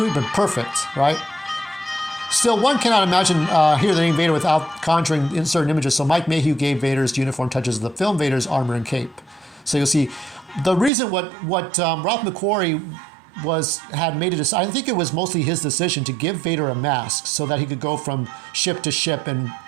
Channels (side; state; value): left; drops out; at 10.9 s